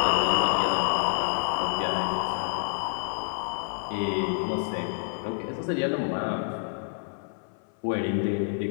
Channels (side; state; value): right; silent; 59 dB below the other